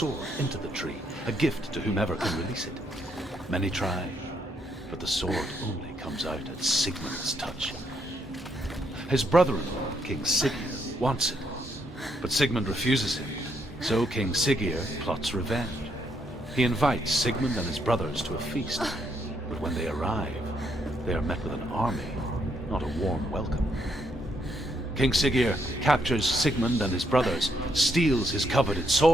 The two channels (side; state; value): both; normal; correlation 0.75